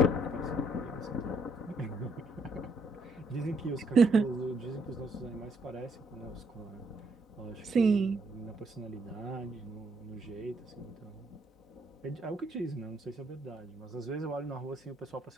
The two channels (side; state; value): both; normal; correlation 0.71